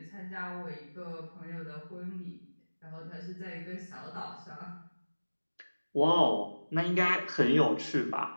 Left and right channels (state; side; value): inverted; both; correlation -1.00